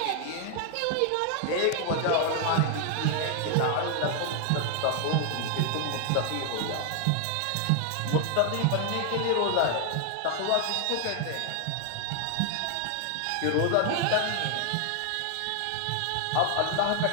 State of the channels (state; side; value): different; both; correlation 0.00